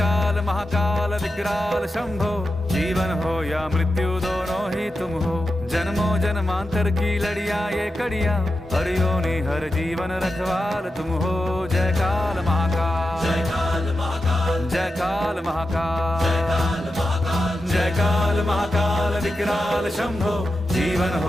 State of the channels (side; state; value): both; normal; correlation 0.90